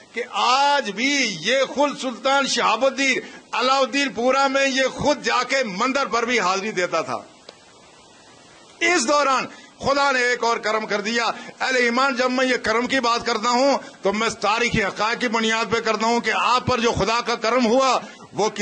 کہ آج بھی یہ خود سلطان شہاب الدین علاء الدین پورہ میں یہ خود جا کے مندر پر بھی حاضری دیتا تھا. اس دوران خدا نے ایک اور کرم کر دیا. اہل ایمان، جب میں یہ کرم کی بات کرتا ہوں تو میں تاریخی حقائق کی بنیاد پہ کرتا ہوں کہ آپ پر جو خدا کا کرم ہوا وہ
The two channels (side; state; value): both; identical; correlation 1.00